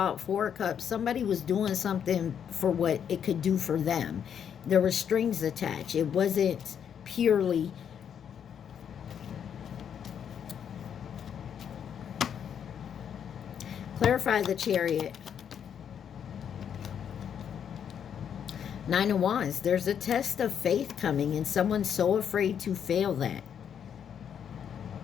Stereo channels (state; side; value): quieter; right; 8.3 dB